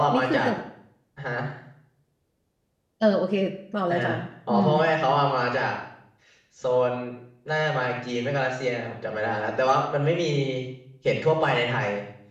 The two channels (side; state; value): both; identical; correlation 1.00